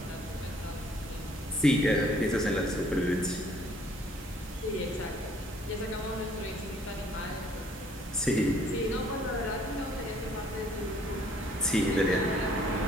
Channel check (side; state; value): both; normal; correlation 0.61